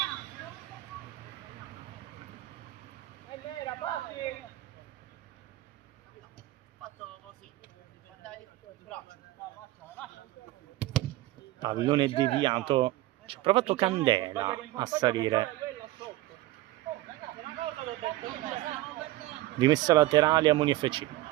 Pallone deviato, ci ha provato Candela a salire. Rimessa laterale a Moni FC.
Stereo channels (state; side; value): quieter; left; 17.2 dB